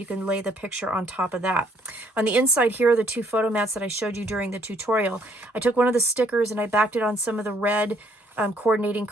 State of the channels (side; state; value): both; normal; correlation 0.65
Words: can lay the picture on top of that. On the inside here are the 2 photo mats that I showed you during the tutorial. I took one of the stickers and I backed it on some of the red coordinating